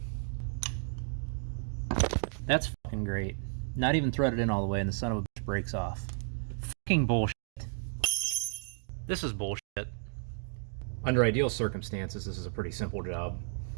That's fucking great. Not even threaded in all the way and the son of a bitch breaks off. Fucking bullshit. This is bullshit. Under ideal circumstances, this is a pretty simple job.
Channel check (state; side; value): silent; left; digital silence